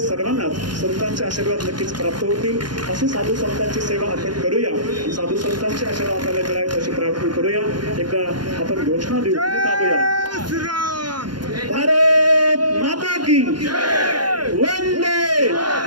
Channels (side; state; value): left; late; 0.71 ms